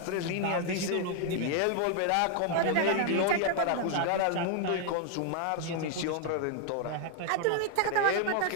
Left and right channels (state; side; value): different; both; correlation 0.00